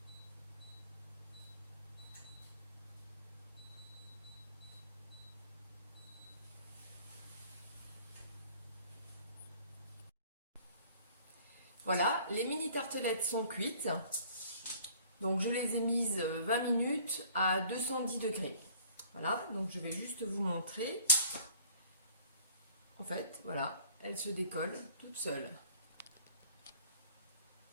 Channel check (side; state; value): both; inverted; correlation -0.52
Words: Voilà, les mini tartelettes sont cuites. Donc je les ai mises 20 minutes à 210 degrés. Voilà, donc je vais juste vous montrer. En fait, voilà, elles se décollent toutes seules.